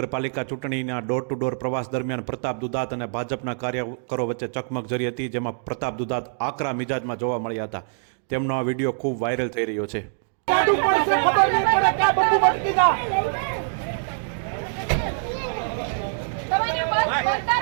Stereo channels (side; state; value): left; silent; digital silence